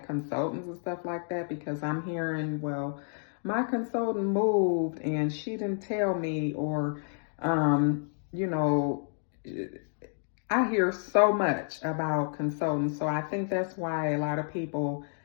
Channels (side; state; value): right; silent; 58 dB below the other